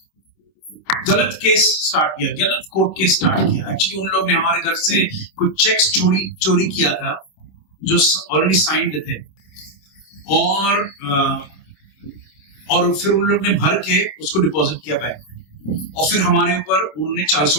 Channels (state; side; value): late; right; 26 ms